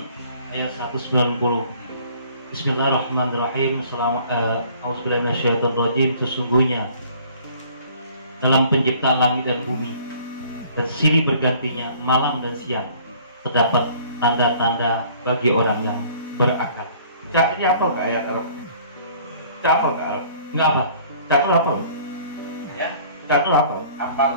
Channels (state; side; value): inverted; both; correlation -0.54